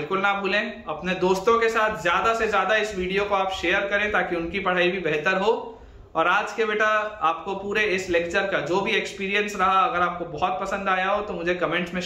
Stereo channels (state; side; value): identical; both; correlation 1.00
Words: ना भूलें। अपने दोस्तों के साथ ज्यादा से ज्यादा इस वीडियो को आप शेयर करें ताकि उनकी पढ़ाई भी बेहतर हो। और आज के बेटा आपको पूरे इस लेक्चर का जो भी एक्सपीरियंस रहा, अगर आपको बहुत पसंद आया हो तो मुझे कमेंट्स में